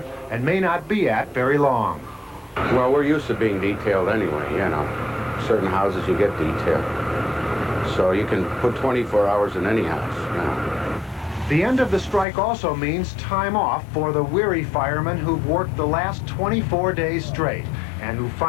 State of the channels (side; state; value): right; drops out; at 12.2 s